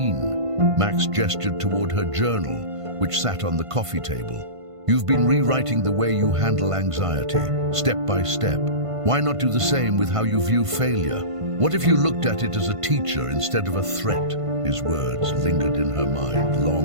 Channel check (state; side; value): late; left; 1.5 ms